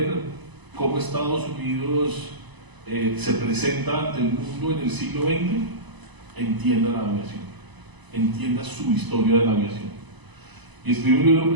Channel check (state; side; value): late; left; 1.0 ms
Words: cómo Estados Unidos se presenta ante el mundo en el siglo XX, entienda la aviación, entienda su historia de la aviación. Y escribe un libro